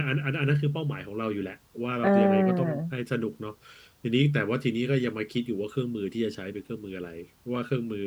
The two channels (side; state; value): both; identical; correlation 1.00